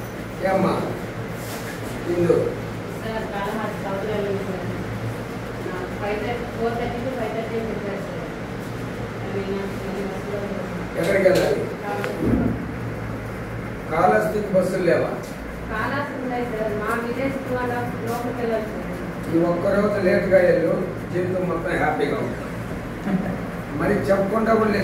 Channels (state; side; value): identical; both; correlation 1.00